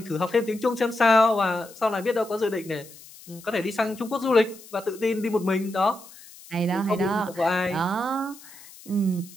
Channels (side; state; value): left; noise; hiss, 20 dB below the sound